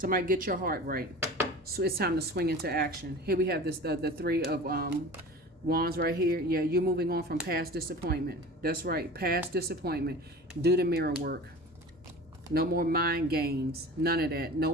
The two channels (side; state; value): both; normal; correlation 0.37